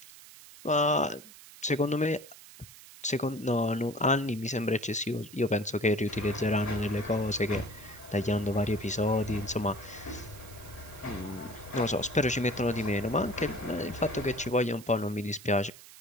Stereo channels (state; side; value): noise; right; hiss, 19 dB below the sound